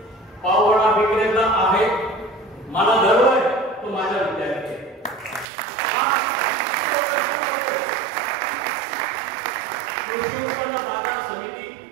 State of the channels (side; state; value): left; drops out; at 5.5 s